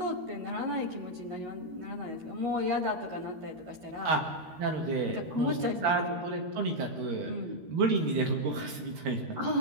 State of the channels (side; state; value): left; late; 13 ms